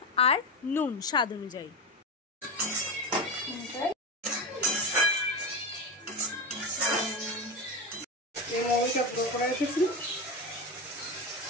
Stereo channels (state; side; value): normal; both; correlation 0.19